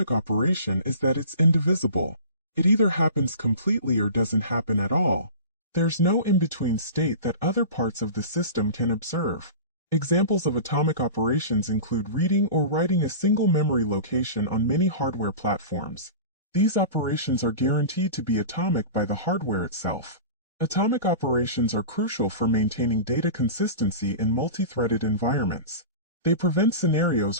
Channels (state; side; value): inverted; both; correlation -0.35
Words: operation is that it's indivisible. It either happens completely or doesn't happen at all. There's no in-between state that other parts of the system can observe. Examples of atomic operations include reading or writing a single memory location on many hardware platforms. These operations are guaranteed to be atomic by the hardware itself. Atomic operations are crucial for maintaining data consistency in multi-threaded environments. They prevent